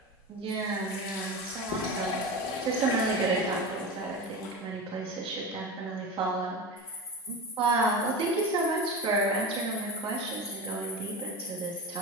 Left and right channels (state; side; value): normal; both; correlation 0.25